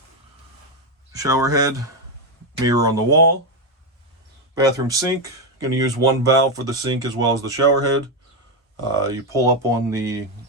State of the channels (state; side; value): normal; both; correlation 0.07